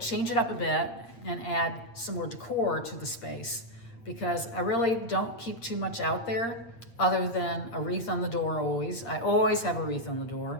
it up a bit and add some more decor to the space because I really don't keep too much out there other than a wreath on the door always. I always have a wreath on the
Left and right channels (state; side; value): late; right; 8.7 ms